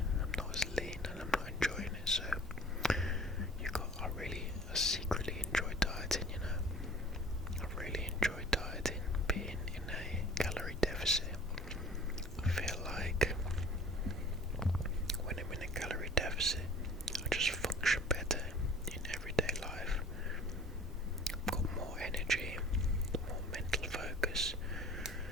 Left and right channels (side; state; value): both; normal; correlation 0.47